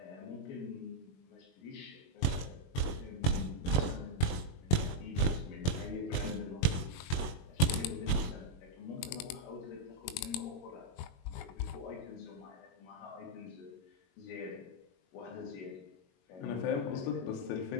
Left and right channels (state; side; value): late; right; 22 ms